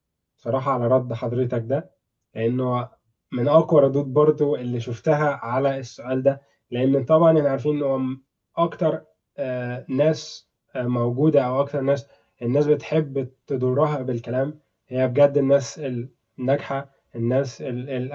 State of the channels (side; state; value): both; identical; correlation 1.00